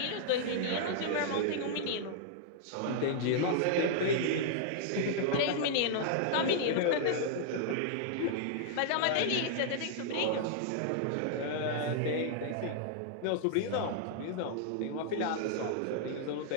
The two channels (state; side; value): different; both; correlation -0.01